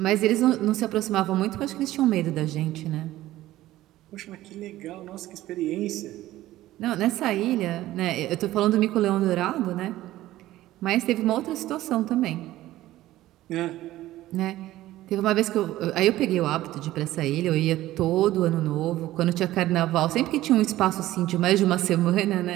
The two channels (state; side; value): quieter; left; 15.4 dB